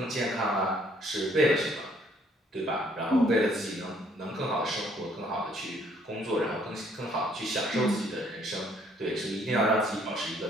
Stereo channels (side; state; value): both; normal; correlation 0.64